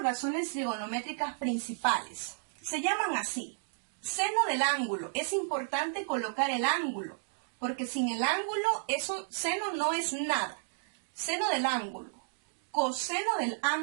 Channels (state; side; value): silent; left; digital silence